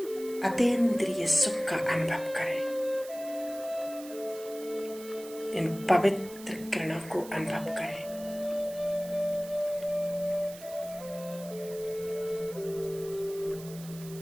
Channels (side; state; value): right; noise; hiss, 17 dB below the sound